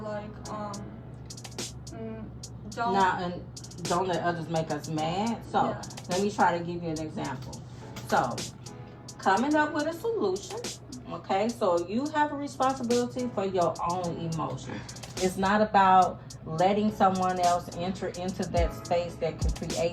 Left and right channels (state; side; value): identical; both; correlation 1.00